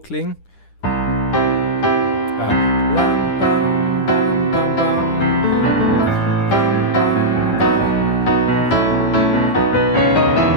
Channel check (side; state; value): right; late; 10 ms